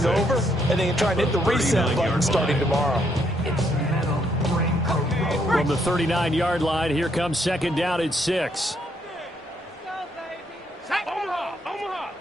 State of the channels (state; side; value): normal; both; correlation 0.73